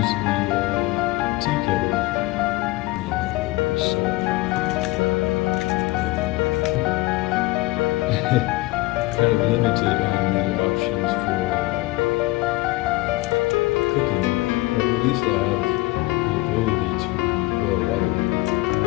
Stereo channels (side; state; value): right; quieter; 20.2 dB